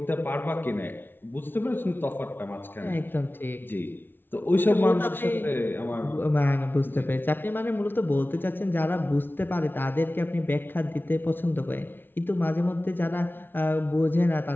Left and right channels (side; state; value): right; late; 0.10 ms